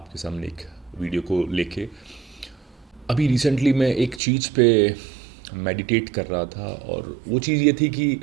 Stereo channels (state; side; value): drops out; left; at 4.2 s